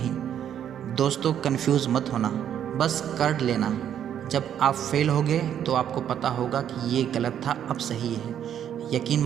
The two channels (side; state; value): left; quieter; 9.7 dB